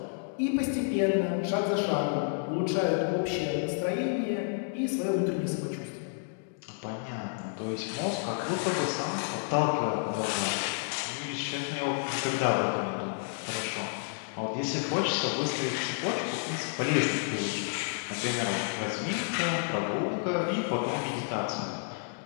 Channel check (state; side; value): silent; right; digital silence